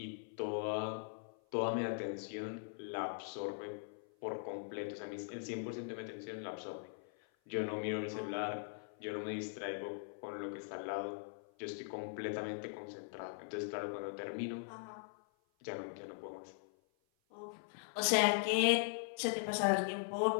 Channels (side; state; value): right; silent; 51 dB below the other